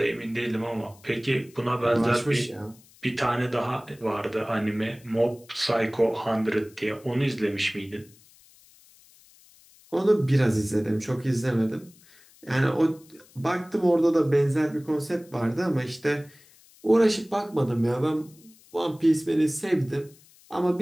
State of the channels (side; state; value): left; noise; hiss, 27 dB below the sound